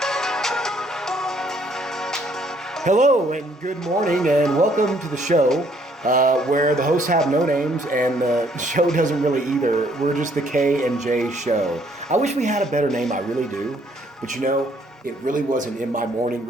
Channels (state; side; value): normal; both; correlation 0.65